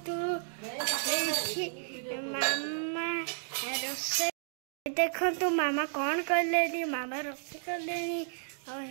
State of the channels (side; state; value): left; silent; digital silence